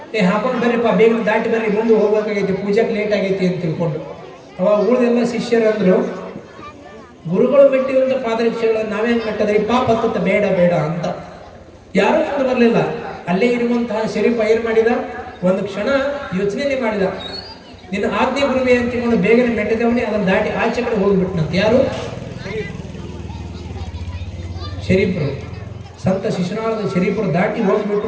ಹಾಕೊಂಡು ಬರ್ರಿಪ್ಪ, ಬೇಗ ದಾಟಿ ಬರ್ರಿ, ಮುಂದೆ ಹೋಗ್ಬೇಕಾಗೈತಿ, ಪೂಜೆಗೆ ಲೇಟ್ ಆಗೈತಿ ಅಂತ ತಿಳ್ಕೊಂಡು. ಅವಾಗ ಉಳಿದೆಲ್ಲ ಶಿಷ್ಯರು ಅಂದ್ರು, ಗುರುಗಳು ಮೆಟ್ಟಿರುವಂಥ ಪಾದರಕ್ಷೆಗಳನ್ನು ನಾವೇನು ಮೆಟ್ಟದ್ರಿ, ಪಾಪ ಹತ್ತ ಬೇಡ ಬೇಡ ಅಂತ. ಯಾರೂ ಮುಂದೆ ಬರಲಿಲ್ಲ. ಅಲ್ಲೇ ಇರುವಂತಹ ಶರೀಫ್ ಏನ್ ಮಾಡಿದ, ಒಂದು ಕ್ಷಣ ಯೋಚನೆ ಮಾಡಿದ, ನಿನ್ನ ಆಜ್ಞೆ ಗುರುವೆ ಅಂತ ತಿಳ್ಕೊಂಡು ಬೇಗನೆ ಮೆಟ್ಟಿದವನೇ ಅದನ್ನು ದಾಟಿ ಆಚೆ ಕಡೆ ಹೋಗ್ಬಿಟ್ನಂತ. ಯಾರು? ಶರೀಫರು, ಸಂತ ಶಿಶುನಾಳದ ಶರೀಫರು ದಾಟಿ ಹೋಗ್ಬಿಟ್ಟು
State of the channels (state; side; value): identical; both; correlation 1.00